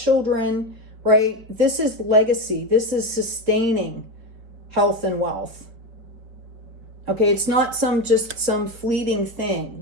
right? This is legacy. This is sustaining health and wealth. Okay, it's not just some fleeting thing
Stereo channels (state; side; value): late; left; 4.5 ms